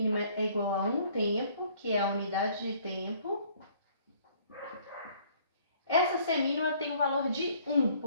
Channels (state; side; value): inverted; both; correlation -0.59